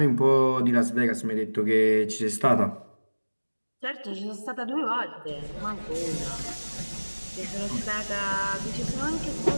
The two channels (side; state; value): both; inverted; correlation -1.00